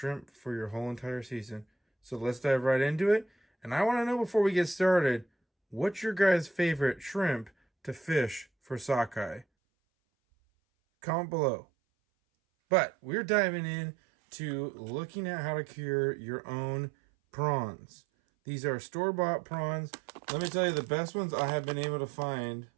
for your whole entire season. So let's dive right into it. And I want to know, before we get started, what's your guys' favorite shrimp to fish for sockeye? Comment below. But we're diving in to looking at how to cure your own prawns. These are store-bought prawns. Let me tell you, the best ones I have been able to find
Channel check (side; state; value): left; drops out; at 9.5 s